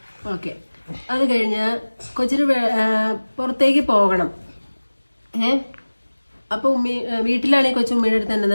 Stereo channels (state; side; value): inverted; both; correlation -1.00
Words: ഓക്കെ. അത് കഴിഞ്ഞ് കൊച്ചിന് പുറത്തേക്ക് പോകണം. അപ്പൊ വീട്ടിലാണെങ്കിൽ കൊച്ചു ഉമ്മയുടെ അടുത്ത് എന്നാ